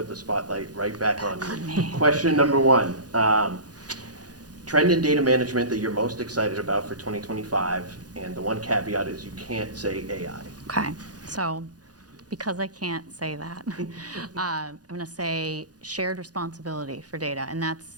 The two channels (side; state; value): left; late; 0.69 ms